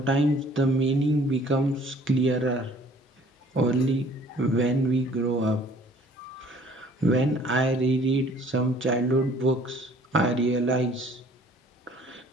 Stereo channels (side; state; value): both; normal; correlation 0.55